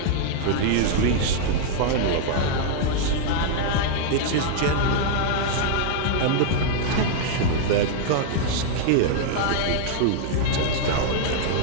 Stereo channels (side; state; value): both; different; correlation -0.01